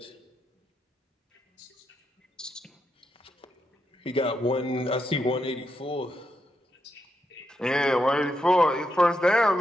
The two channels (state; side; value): normal; both; correlation 0.83